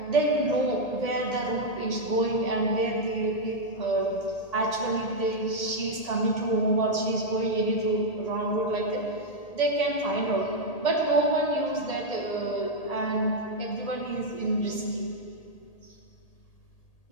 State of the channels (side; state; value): right; late; 1.8 ms